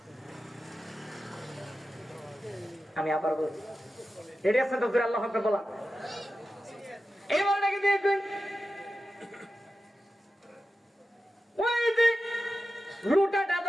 আমি আবার বলছি, রেডি আছেন তো? আল্লাহ হাফেজ বলা এবার নাকি দেখবেন ওই যে লুটাটা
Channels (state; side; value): normal; both; correlation 0.92